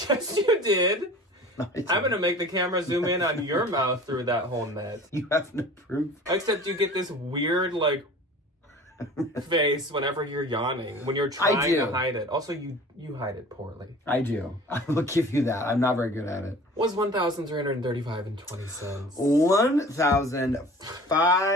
you did. No, I'm going to make the camera zoom in on your mouth through that whole net. You have no proof. Except you get this weird, like, face whenever you're yawning, when you're trying to hide it. Also, you hide it poorly. I do. I will give you that. I'm not very good at it. Was $1,335.20.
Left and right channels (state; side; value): normal; both; correlation 0.43